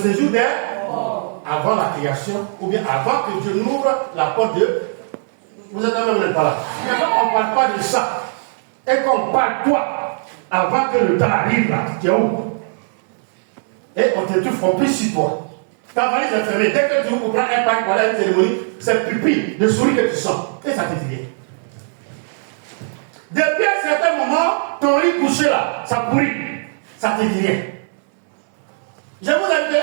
des avant la création, ou bien avant que Dieu n'ouvre la porte de... Vous êtes là, vous n'êtes pas là. Mais quand on ne parle pas de ça, et qu'on parle toi, avant que le temps arrive là, tu es où? Et on t'étouffe, on pisse sur toi. Ta valise est fermée. Dès que tu ouvres pour prendre un pack pour aller à une cérémonie, c'est pupille de souris que tu sens. Et ça te dit rien. Depuis un certain moment, ton lit couché là, ça pourrit. Ça te dit rien. Je vous ai dit,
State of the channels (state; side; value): silent; left; 66 dB below the other